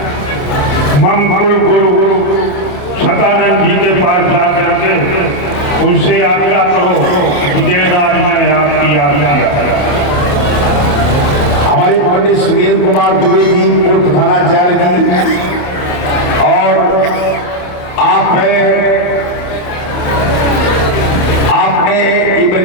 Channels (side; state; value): right; late; 28 ms